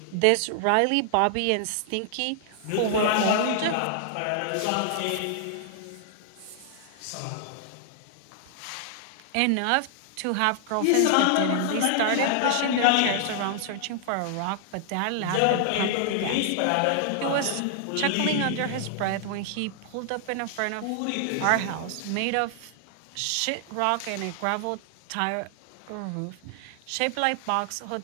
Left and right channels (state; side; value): different; both; correlation 0.00